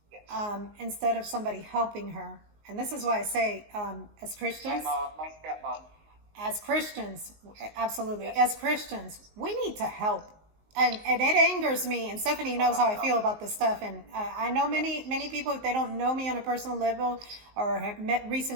Yes. Instead of somebody helping her. And this is why I say, as Christians, My stepmom. as Christians, absolutely, Yes. as Christians, we need to help. And it angers me, and Stephanie knows how I feel about this stuff. And I know many people, if they don't know me on a personal level or have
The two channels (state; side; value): late; left; 19 ms